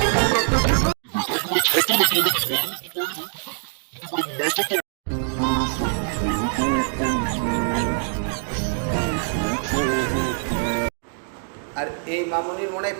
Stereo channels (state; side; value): silent; left; digital silence